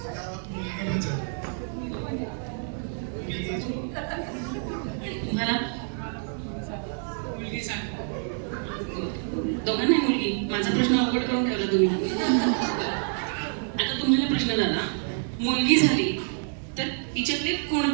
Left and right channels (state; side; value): silent; left; 58 dB below the other